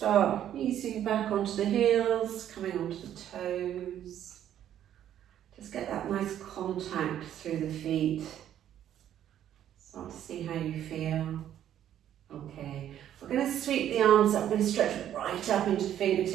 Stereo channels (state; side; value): quieter; left; 10.8 dB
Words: easing back onto the heels, coming onto the toes. Just get that nice contact through the feet. Start to see how you feel. Okay. We're going to sweep the arms up. We're going to stretch right up into the